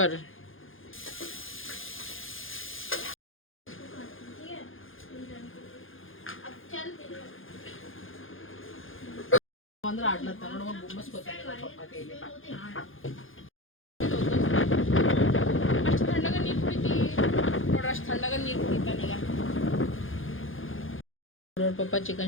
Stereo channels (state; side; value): late; right; 0.59 ms